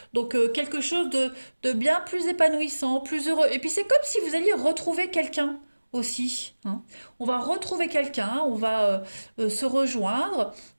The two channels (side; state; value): both; inverted; correlation -1.00